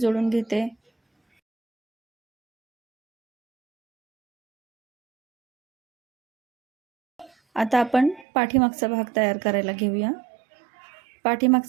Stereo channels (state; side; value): drops out; left; at 8.2 s